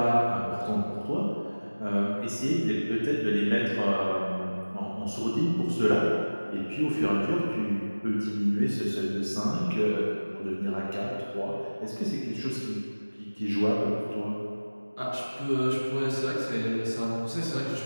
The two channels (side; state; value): both; inverted; correlation -1.00